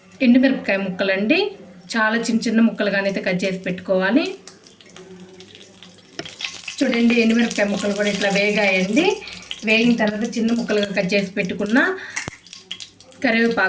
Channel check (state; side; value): identical; both; correlation 1.00